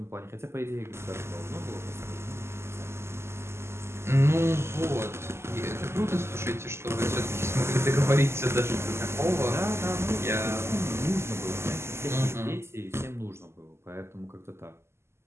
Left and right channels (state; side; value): late; left; 0.12 ms